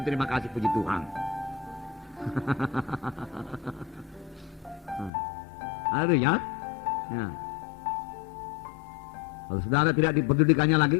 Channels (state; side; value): drops out; right; at 5.1 s